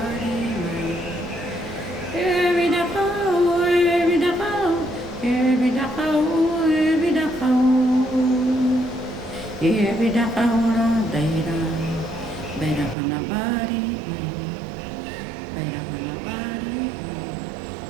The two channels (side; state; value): left; drops out; at 13.0 s